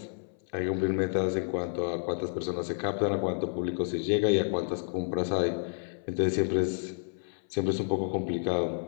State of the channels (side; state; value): right; silent; 57 dB below the other